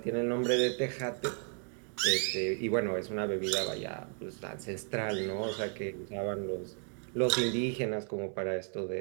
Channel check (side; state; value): left; quieter; 39.7 dB